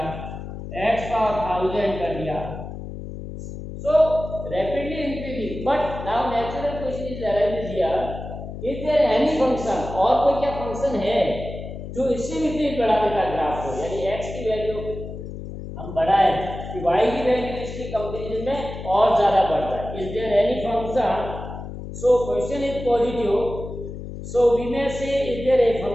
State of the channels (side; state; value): left; noise; hum, 9 dB below the sound